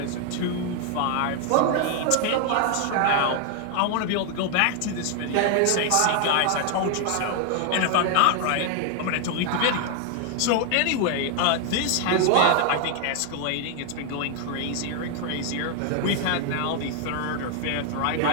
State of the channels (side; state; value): both; different; correlation 0.00